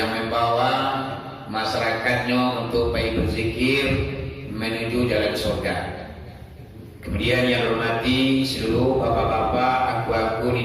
membawa masyarakatnya untuk baik berzikir menuju jalan surga. Kemudian yang dihormati seluruh bapak-bapak, aku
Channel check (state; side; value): identical; both; correlation 1.00